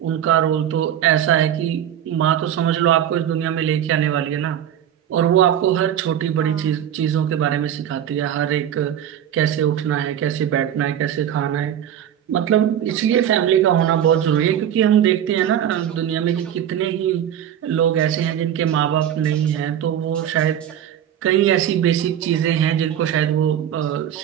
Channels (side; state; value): left; quieter; 10.2 dB